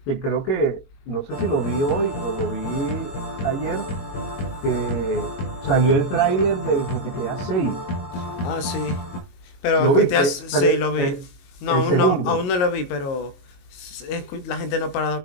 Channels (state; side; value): late; right; 22 ms